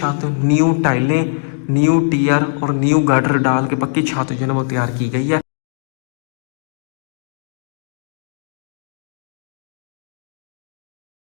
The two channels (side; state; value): right; silent; digital silence